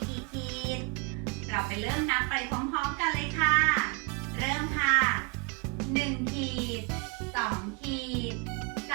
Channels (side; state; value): left; quieter; 33.9 dB